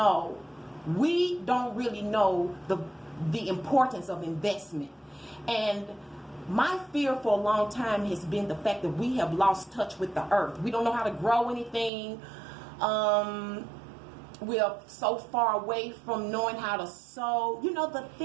We don't really know the importance of investment. And my fear for a long time has been the fact that we have lost touch with the earth. We don't know how to grow anything. We are so far away from knowing how to sow. You know, the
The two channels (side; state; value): left; drops out; at 11.9 s